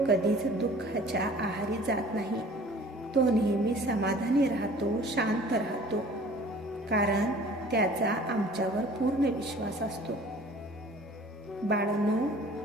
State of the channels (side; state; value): both; normal; correlation 0.49